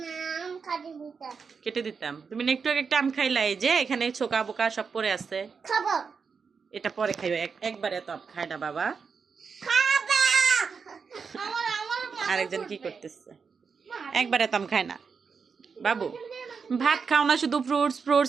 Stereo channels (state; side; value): quieter; left; 5.6 dB